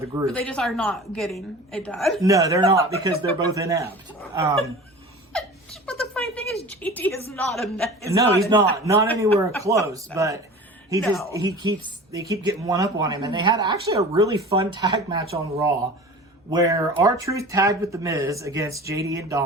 the group. But they just are not getting it done. No, they're not, because they're both inept. But the funny thing is, JD is not inept. He's not anywhere close. But they keep getting one up on him, and they had actually a really fun tag match on Raw, where R-Truth tagged with The Miz against JD and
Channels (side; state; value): both; normal; correlation 0.38